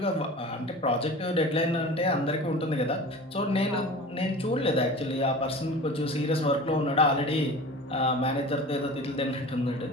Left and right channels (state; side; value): normal; both; correlation 0.37